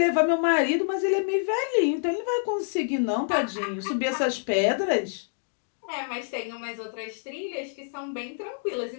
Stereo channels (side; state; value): right; silent; digital silence